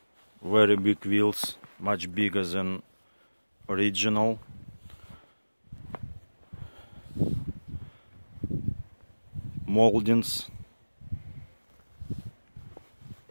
very big wheels, much bigger than original. Moldings,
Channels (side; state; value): both; inverted; correlation -1.00